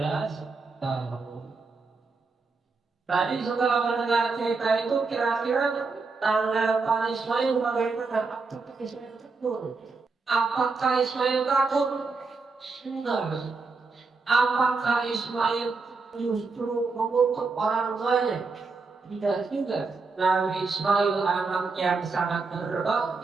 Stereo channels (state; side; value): quieter; left; 4.2 dB